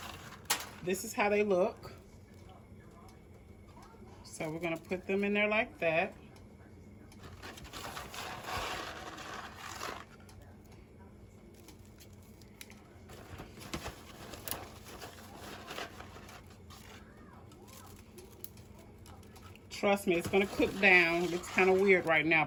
this is how they look. So we're going to put them in there like that. Trust me, it's going to cook down. It's kind of weird right now,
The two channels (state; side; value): identical; both; correlation 1.00